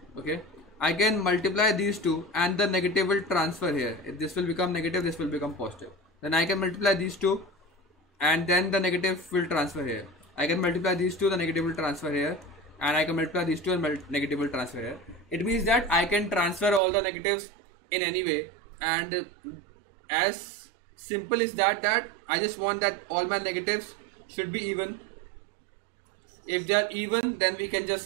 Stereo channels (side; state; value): left; drops out; at 16.8 s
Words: okay, I can multiply these two and the negative will transfer here. If this will become negative, this will become positive. Then I can multiply these two and then the negative will transfer here. I can multiply these two, the negative will transfer here, and I can multiply these two and negative will transfer here. It means that I can transfer all the negatives in any way, and as simple as that I just want that all my negatives should be even. If they are even, then we can just